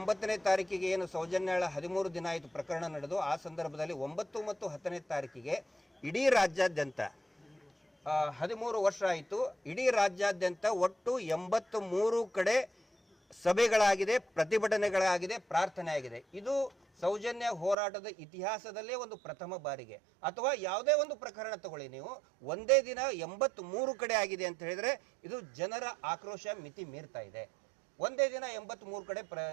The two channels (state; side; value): drops out; left; at 17.8 s